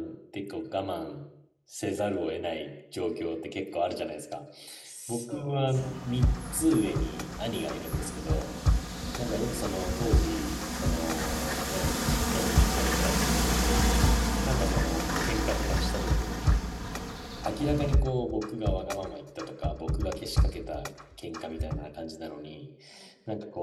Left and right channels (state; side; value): identical; both; correlation 1.00